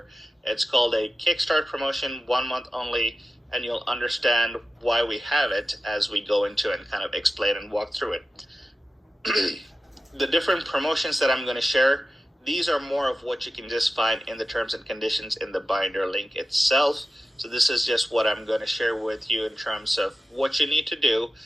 It's called a Kickstart promotion, 1 month only, and you'll understand why we have it as we go into and kind of explain and walk through it. The different promotions that I'm going to share, these are more of what you can just find in the terms and conditions in the binder link itself. So this is just what I'm going to share with you in terms of what you need to do.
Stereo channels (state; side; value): normal; both; correlation 0.93